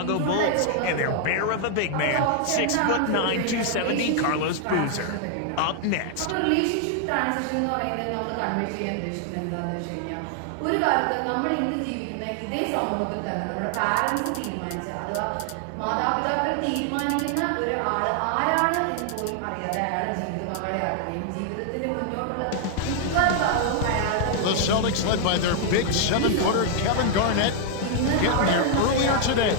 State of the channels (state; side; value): different; both; correlation 0.00